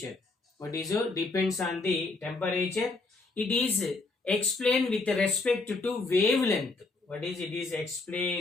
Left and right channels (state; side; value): quieter; right; 3.6 dB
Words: What is it? Depends on the temperature. It is explained with respect to wavelength. What is it? Is